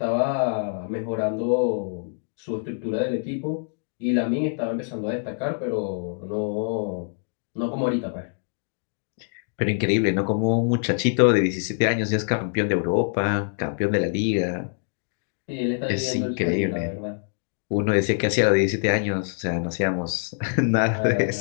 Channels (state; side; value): silent; right; digital silence